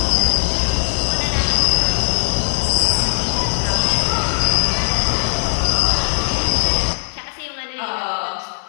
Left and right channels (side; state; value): right; silent; 67 dB below the other